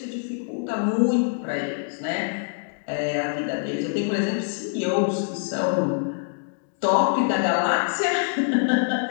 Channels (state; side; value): silent; right; digital silence